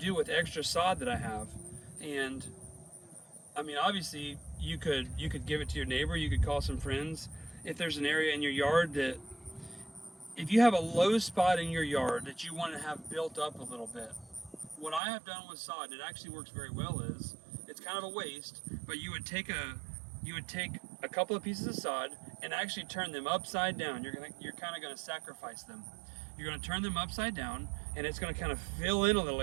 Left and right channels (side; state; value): left; drops out; at 15.0 s